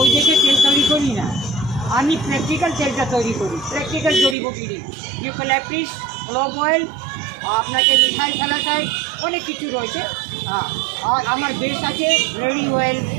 দেখে তেল তৈরি করি না, আমি প্র্যাকটিক্যাল তেলটা তৈরি করি, প্র্যাকটিক্যাল জড়িবুটি দিই, ইউক্যালিপটাস, ক্লোভ অয়েল, আপনাকে মিথাইল স্যালাসাইড, অনেক কিছু রয়েছে। আর আমার বেস আছে রেডি অয়েল,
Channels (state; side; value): drops out; left; at 4.4 s